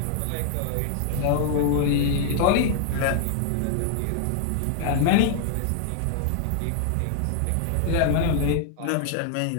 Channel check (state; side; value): different; both; correlation 0.00